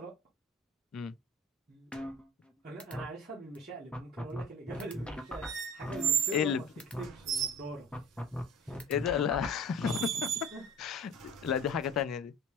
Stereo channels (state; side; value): normal; both; correlation 0.44